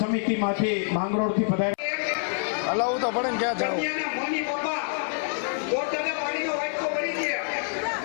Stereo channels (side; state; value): right; silent; 61 dB below the other